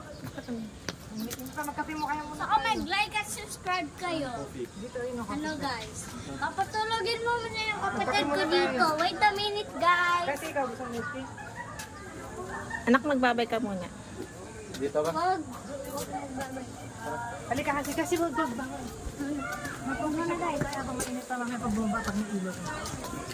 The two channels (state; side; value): identical; both; correlation 1.00